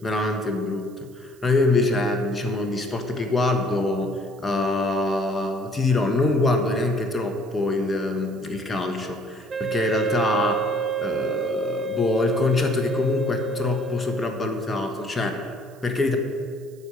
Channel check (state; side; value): noise; right; hiss, 28 dB below the sound